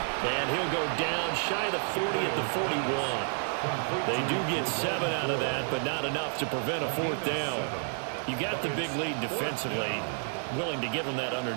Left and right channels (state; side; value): silent; left; 58 dB below the other